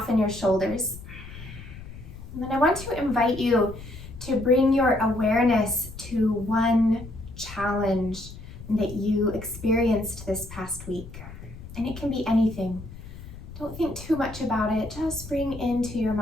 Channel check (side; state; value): left; noise; rumble, 14 dB below the sound